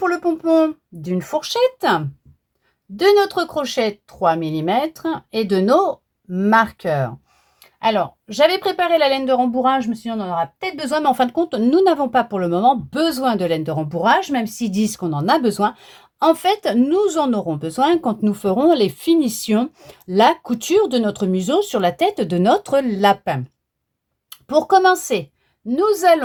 le pompon d'une fourchette, de notre crochet 3 mm et de nos marqueurs. Alors, j'avais préparé la laine de rembourrage, je me suis dit on en aura peut-être besoin, mais en fin de compte, nous n'avons pas pour le moment besoin de laine de rembourrage, même s'ils disent qu'on en a besoin. En fait, nous en aurons besoin quand nous ferons les finitions, la couture de notre museau sur la tête de notre lapin. Pour commencer, nous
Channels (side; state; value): both; identical; correlation 1.00